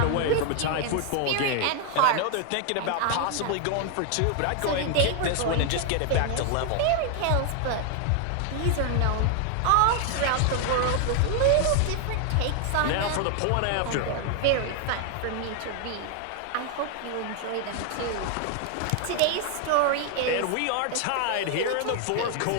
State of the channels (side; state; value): both; different; correlation 0.00